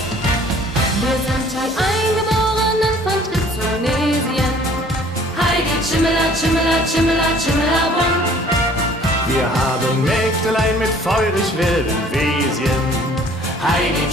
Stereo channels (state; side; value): normal; both; correlation 0.54